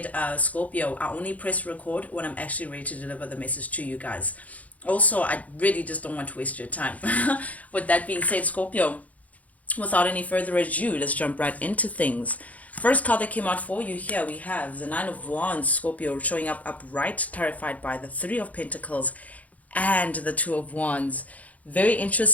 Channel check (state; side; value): late; right; 0.072 ms